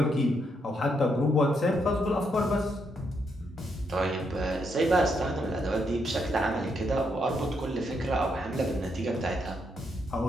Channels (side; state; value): both; normal; correlation 0.77